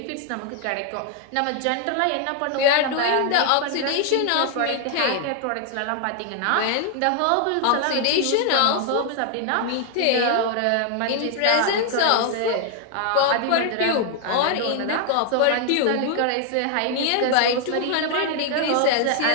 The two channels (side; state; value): both; different; correlation 0.00